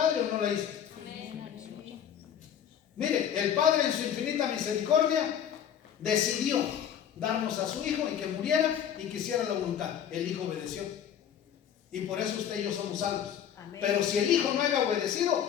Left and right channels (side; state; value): right; quieter; 9.1 dB